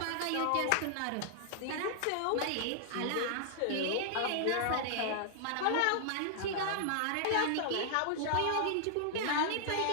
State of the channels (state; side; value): different; both; correlation -0.01